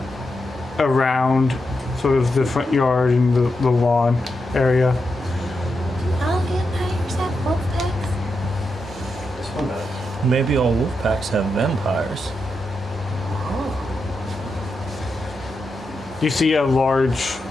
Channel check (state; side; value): normal; both; correlation 0.86